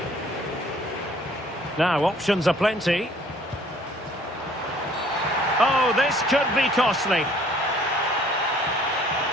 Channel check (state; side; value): normal; both; correlation 0.57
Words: Now, options are plenty. Oh, this could be costly.